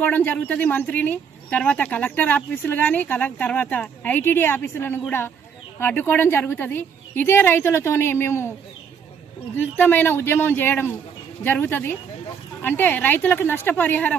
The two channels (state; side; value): quieter; left; 6.8 dB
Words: జరుగుతుంది మంత్రిని, తర్వాత కలెక్టర్ ఆఫీసులు కానీ తర్వాత ఐటీడీ ఆఫీసులను కూడా అడ్డుకోవడం జరుగుతుంది. ఇదే రైతులతోనే మేము ఉధృతమైన ఉద్యమం చేయడం జరుగుతుంది. అంటే రైతులకు